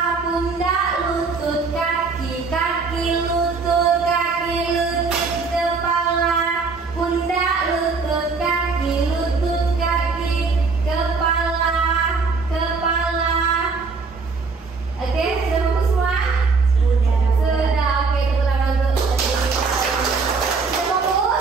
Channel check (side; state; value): left; quieter; 4.5 dB